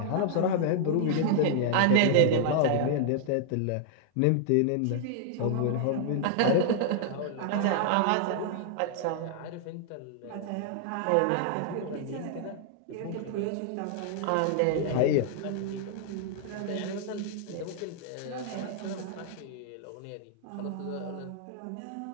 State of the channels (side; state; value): both; different; correlation 0.00